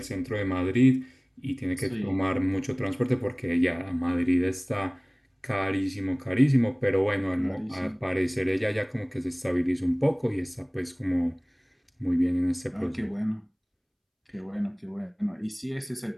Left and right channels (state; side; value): identical; both; correlation 1.00